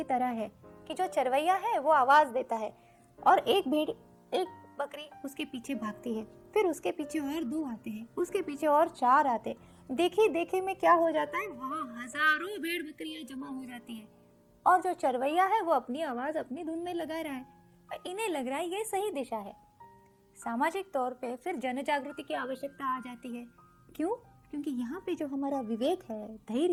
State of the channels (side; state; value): both; identical; correlation 1.00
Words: तरह है कि जो चरवैया है वो आवाज देता है और एक बकरी उसके पीछे भागती है, फिर उसके पीछे और 2 आते हैं, उसके पीछे और 4 आते। देखिए में क्या हो जाता है, वहाँ हजारों भेड़ बकरियां जमा हो जाती है और जो चरवैया है वो अपनी आवाज अपनी धुन में लगा रहा है और इन्हें लग रहा है ये सही दिशा है। सामाजिक तौर पे फिर जन जागृति की आवश्यकता आ जाती है। क्यों? क्योंकि यहाँ पे जो हमारा विवेक है,